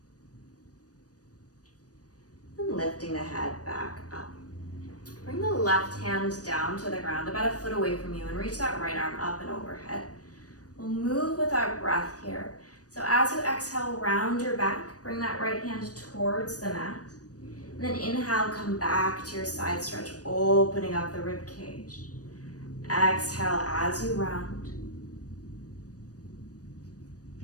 And lifting the head back up. Bring the left hand down to the ground, about a foot away from you, and reach that right arm up and overhead. We'll move with our breath here. So as you exhale, round your back, bring that right hand towards the mat. And then inhale, come back to your side stretch, opening up the rib cage. Exhale as you round.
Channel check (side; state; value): right; late; 0.67 ms